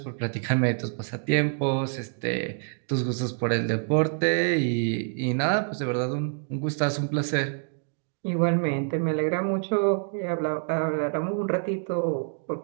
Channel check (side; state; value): left; silent; 58 dB below the other